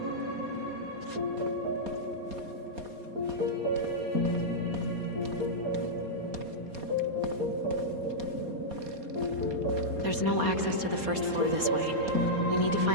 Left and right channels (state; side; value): late; left; 4.2 ms